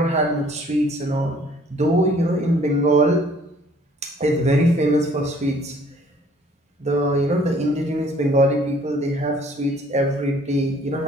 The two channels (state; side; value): normal; both; correlation 0.58